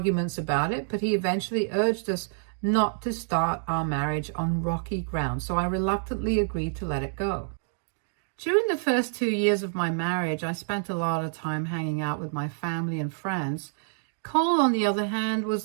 about it, but he eventually urged us not to start our marriage on rocky ground, so I reluctantly agreed to let it go. During the first 2 years of my marriage, I spent a lot of time hanging out with my family and friends. Cole, on the other hand,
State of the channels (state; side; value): silent; left; digital silence